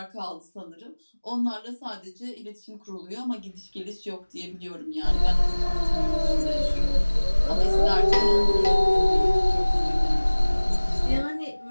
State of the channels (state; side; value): inverted; both; correlation -1.00